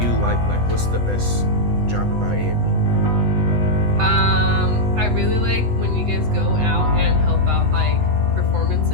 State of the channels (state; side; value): late; left; 8.0 ms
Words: like what's the best job about AME? I really like when you guys go out and help out